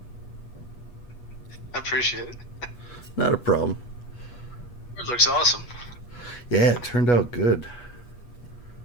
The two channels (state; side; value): late; right; 8.3 ms